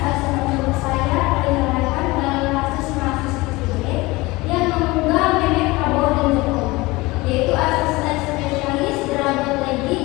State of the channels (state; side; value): quieter; right; 21.9 dB